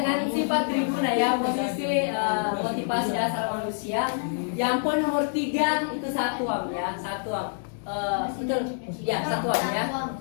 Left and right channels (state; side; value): silent; right; digital silence